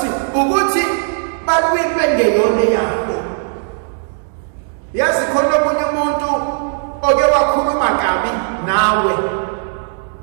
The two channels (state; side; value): silent; left; 68 dB below the other